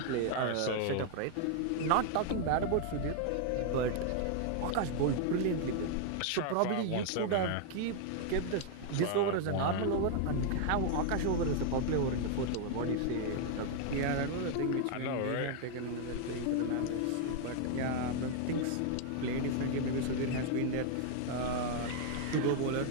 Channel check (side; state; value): both; different; correlation 0.00